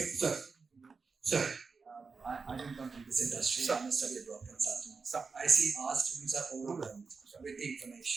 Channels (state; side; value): quieter; left; 4.8 dB